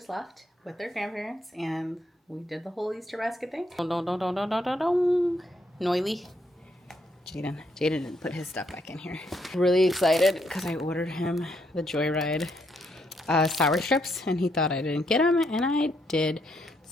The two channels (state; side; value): normal; both; correlation 0.74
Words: left with their grandparents and we did the whole Easter basket thing. Noily. Jaden didn't put his stuff back in here. Really excited because I ordered him the Joyride sour strips and he thought I didn't get them and I did.